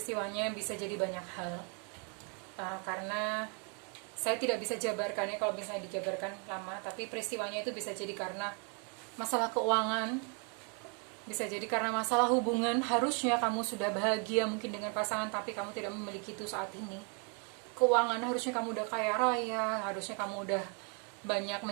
bisa jadi banyak hal. Karena saya tidak bisa jabarkannya, kalau misalnya dijabarkan lama, tapi peristiwanya itu bisa jadi karena masalah keuangan, bisa jadi karena masalah hubungan. Harusnya kamu sudah bahagia mungkin dengan pasangan, tapi kamu tidak memiliki itu saat ini. Keuangan, harusnya kamu udah kaya raya, harusnya kamu udah banyak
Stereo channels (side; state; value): left; quieter; 38.1 dB